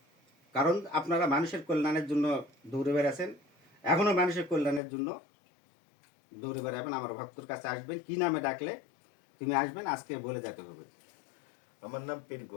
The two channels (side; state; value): right; drops out; at 4.8 s